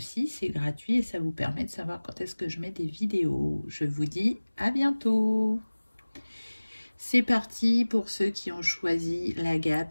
c'est gratuit et ça vous permet de savoir quand est-ce que je mets des vidéos. Je vous dis à bientôt. C'est parti pour ceux qui ont choisi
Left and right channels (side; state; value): both; inverted; correlation -1.00